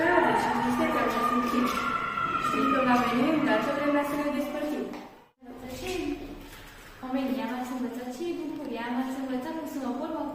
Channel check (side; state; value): both; identical; correlation 1.00